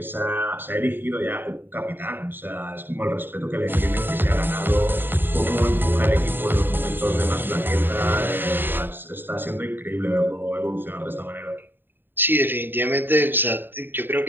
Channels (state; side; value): late; left; 0.095 ms